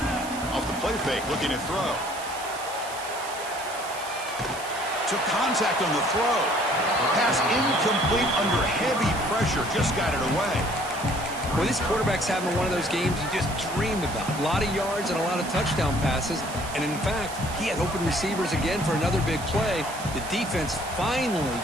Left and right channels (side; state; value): right; noise; hiss, 13 dB below the sound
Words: Off the play fake, looking to throw. Took contact on the throw. Pass incomplete under heavy pressure, just got it away. Well, this quarterback's having one of those games you just dreamed about. A lot of yards and a lot of touchdown passes. And, in fact, he had open receivers again for another big play. The defense finally